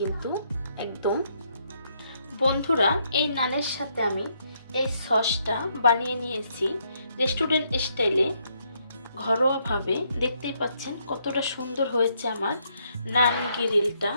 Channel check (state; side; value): inverted; both; correlation -0.74